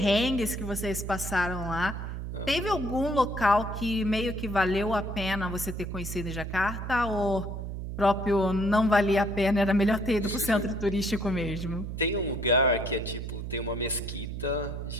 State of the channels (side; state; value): right; noise; hum, 6 dB below the sound